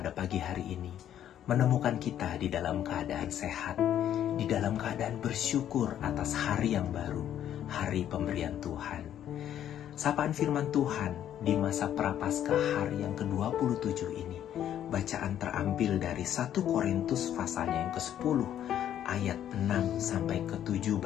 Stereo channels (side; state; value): right; quieter; 10.6 dB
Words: pagi hari ini, menemukan kita di dalam keadaan sehat, di dalam keadaan bersyukur atas hari yang baru, hari pemberian Tuhan. Sapaan firman Tuhan di masa Prapaskah hari yang ke-27 ini, bacaan terambil dari 1 Korintus pasalnya yang ke-10 ayat 6 sampai ke-7